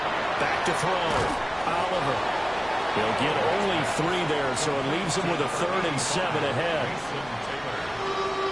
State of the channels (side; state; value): left; noise; hum, 22 dB below the sound